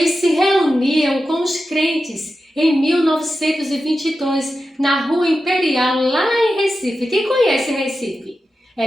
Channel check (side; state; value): both; normal; correlation 0.91